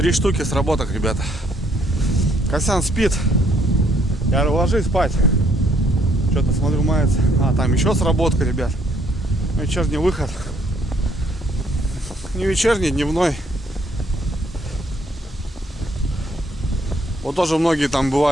штуки сработок, ребята. Косян спит. Я говорю, ложись спать. Что-то смотрю, мается. А, там еще сработка, ребят. Вечерний выход. Не вечерний, дневной. Вот тоже многие там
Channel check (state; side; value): normal; both; correlation 0.68